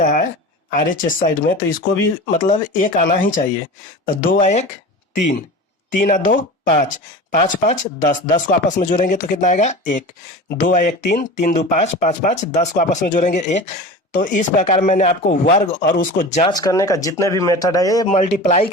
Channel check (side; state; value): both; normal; correlation 0.33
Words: है RHS साइड में, तो इसको भी मतलब 1 आना ही चाहिए। तो 2 आ 1 3, 3 आ 2 5, 5 5 10, 10 को आपस में जोड़ेंगे तो कितना आएगा 1, 2 आ 1 3, 3 2 5, 5 5 10 को आपस में जोड़ेंगे 1। तो इस प्रकार मैंने आपको वर्ग और उसको जांच करने का जितने भी मेथड है, ये मल्टीप्लाई